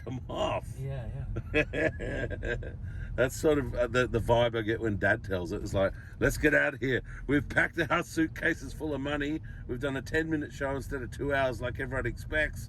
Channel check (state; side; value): identical; both; correlation 1.00